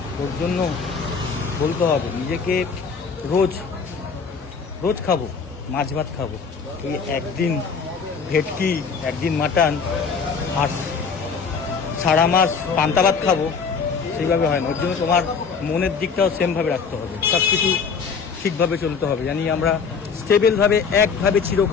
ওর জন্য বলতে হবে নিজেকে, রোজ রোজ খাবো মাছ ভাত খাবো, এই একদিন ভেটকি, একদিন মাটন, আর সারা মাস পান্তা ভাত খাবো, সেইভাবে হয় না। ওর জন্য তোমার মনের দিকটাও সেমভাবে রাখতে হবে, সব কিছু ঠিকভাবে চলতে হবে, জানি আমরা স্টেবেলভাবে একভাবে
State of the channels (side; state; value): right; quieter; 5.7 dB